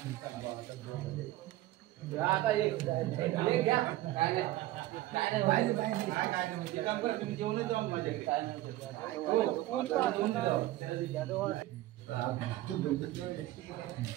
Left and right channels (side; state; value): left; quieter; 16.1 dB